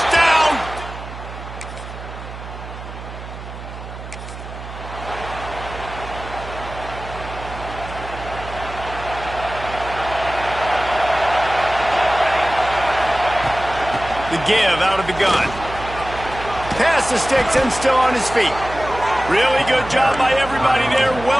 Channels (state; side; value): noise; right; hum, 12 dB below the sound